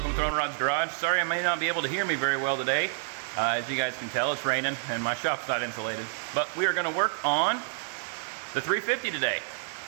to Throwing Rod's Garage. Sorry I may not be able to hear me very well today. As you guys can tell, it's raining and my shop's not insulated. But we are going to work on the 350 today.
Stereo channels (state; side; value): silent; left; digital silence